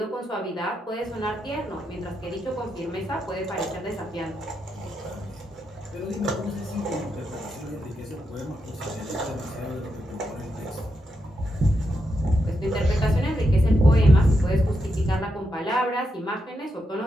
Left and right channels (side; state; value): both; normal; correlation 0.84